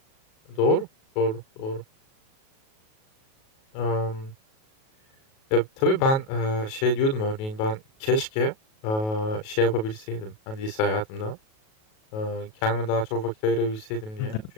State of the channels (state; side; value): late; right; 37 ms